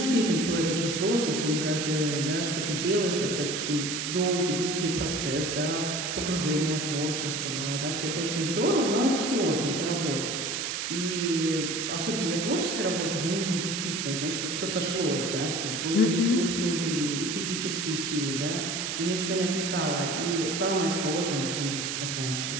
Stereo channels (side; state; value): right; noise; hiss, 2 dB below the sound